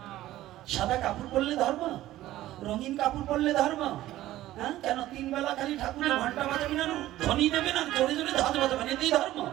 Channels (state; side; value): quieter; left; 14.9 dB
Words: সাদা কাপড় পরলে ধর্ম? রঙিন কাপড় পরলে ধর্ম? হ্যাঁ, কেন তিন বেলা খালি ঠাকুরের ঘন্টা বাজাবি না, ধ্বনি দেবে না, জোরে জোরে ধাজ বাজাবে না, এটাই ধর্ম?